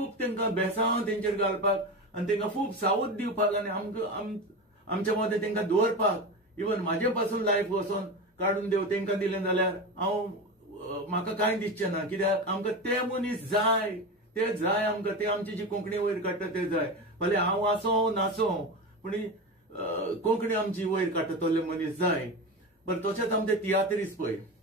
तेंकां बेसांव तेंचेर घालपाक आनी तेंकां खूब सावध दिवपाक आनी आमच्या मदें तेंकां दवरपाक. इवन म्हाजे पासून लायफ वचोन काडून देव तेंकां दिलें जाल्यार म्हाका कांय दिसचें ना. कित्याक आमकां ते मनीस जाय, ते जाय आमकां, ते आमची जी कोंकणी वयर काडटा ते जाय. भले हांव आसों नासों, पूण कोंकणी आमची वयर काडटा तसले मनीस जाय. बरें तशेंच आमचे तियात्रीस पळय,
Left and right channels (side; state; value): both; normal; correlation 0.23